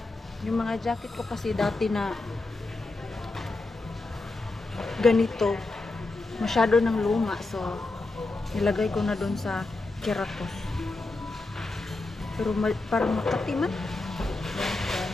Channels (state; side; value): quieter; right; 3.2 dB